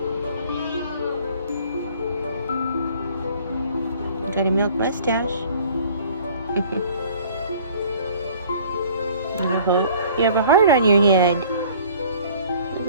Got a milk mustache. I hope you have a heart on your head.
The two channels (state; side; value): inverted; both; correlation -0.52